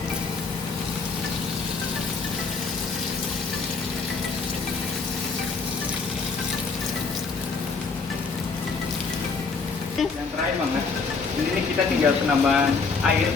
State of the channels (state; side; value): quieter; right; 4.6 dB